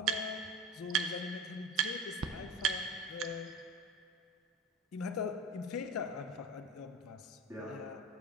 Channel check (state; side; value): normal; both; correlation 0.31